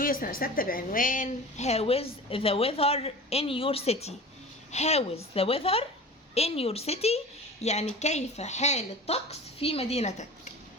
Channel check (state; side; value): normal; both; correlation 0.36